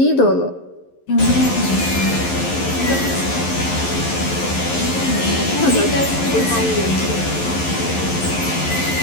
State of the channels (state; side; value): late; right; 11 ms